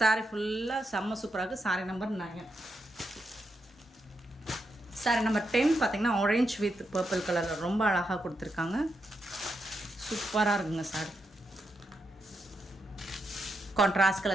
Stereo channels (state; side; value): normal; both; correlation 0.84